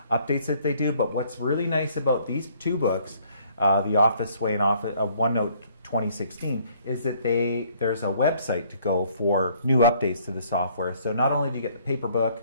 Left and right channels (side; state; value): both; inverted; correlation -0.61